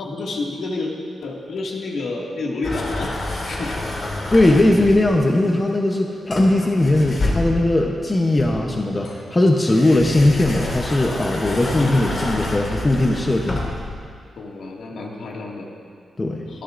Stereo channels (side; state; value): both; normal; correlation 0.94